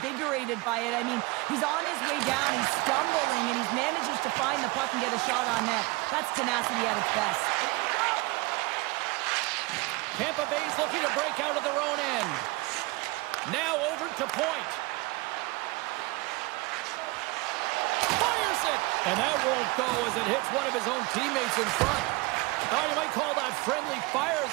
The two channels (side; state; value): left; quieter; 23.7 dB